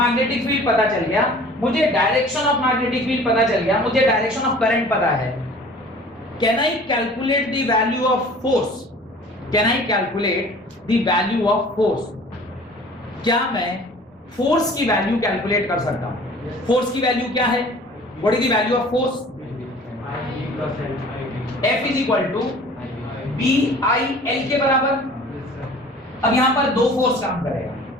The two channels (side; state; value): both; normal; correlation 0.47